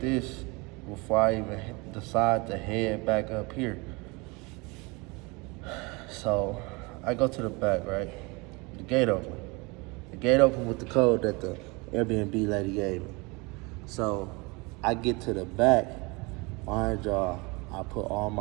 before I even decide to head back up here. So I go to the back, right? The gate open. The gate open with the code that the Airbnb lady gave me. So I get to the back, mind y'all, I put all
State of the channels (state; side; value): quieter; left; 26.9 dB